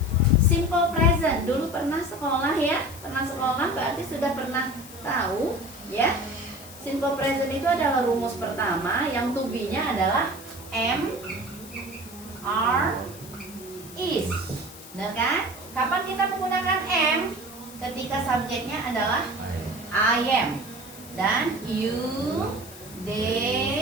simple present. Dulu pernah sekolah ya, pernah sekolah berarti sudah pernah tahu ya. Simple present itu adalah rumus pertama, yang to be-nya adalah am, are, is. Benar kan? Kapan kita menggunakan am? Ketika subjeknya adalah I am, dan you,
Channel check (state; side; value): noise; left; hiss, 17 dB below the sound